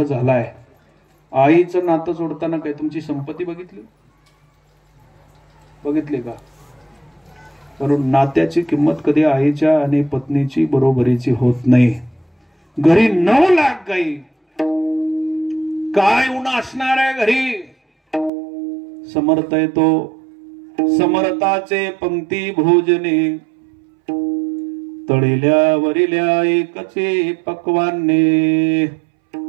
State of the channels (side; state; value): left; drops out; at 18.3 s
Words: झालाय. आईचं नातं जोडताना काय तुमची संपत्ती बघितली का. कारण नात्याची किंमत कधी आईच्या आणि पत्नीची बरोबरीची होत नाही. घरी 9 लाख गाई, काय उन्हा असणार आहे घरी. समर्थ येतो समर्थाचे पंक्ती भोजने, तळिल्या वरिल्या एकचे पक्वाने.